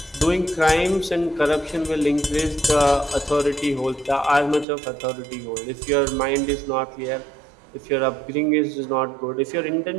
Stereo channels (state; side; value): drops out; left; at 4.7 s